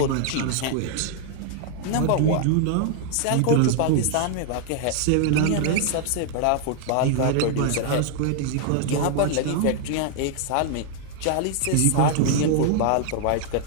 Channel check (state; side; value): different; both; correlation 0.00